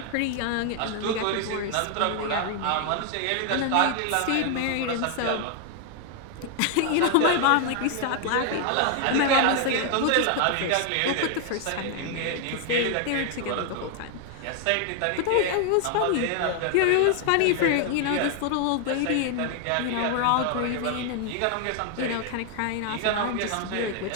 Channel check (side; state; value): both; different; correlation 0.00